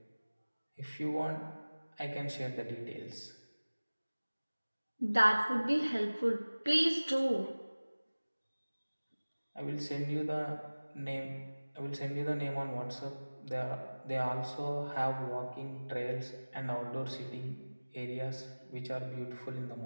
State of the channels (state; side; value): inverted; both; correlation -1.00